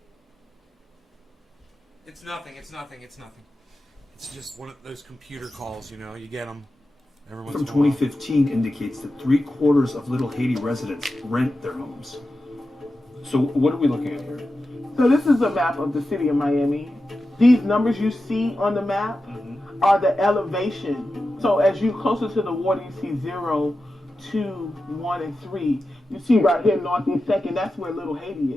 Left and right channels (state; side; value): normal; both; correlation 0.92